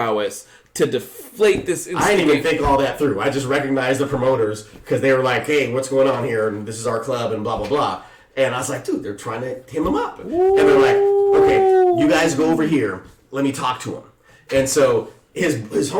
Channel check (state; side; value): identical; both; correlation 1.00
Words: to deflate this." I didn't even think all that through. I just recognized the promoters because they were like, "Hey, what's going on here? And this is our club and blah, blah, blah." And I was like, "Dude, they're trying to hem him up." Ooh. And they're like, "Okay, you guys go over here. Let me talk to him." And so his